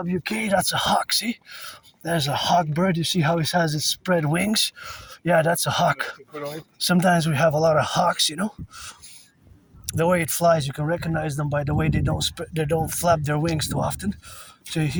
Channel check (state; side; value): identical; both; correlation 1.00